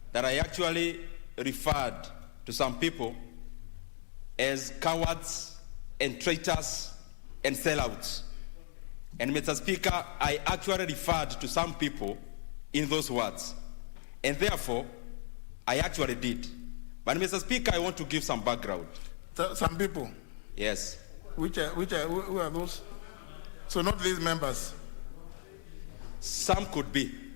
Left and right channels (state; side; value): silent; right; digital silence